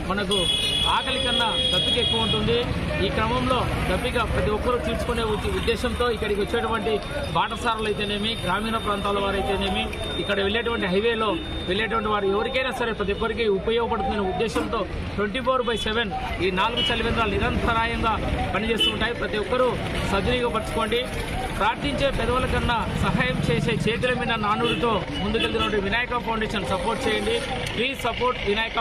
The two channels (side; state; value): both; identical; correlation 1.00